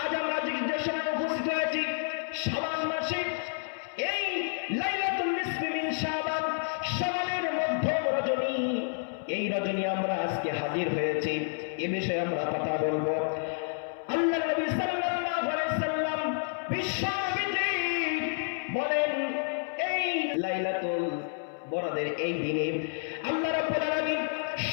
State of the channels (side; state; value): right; silent; 58 dB below the other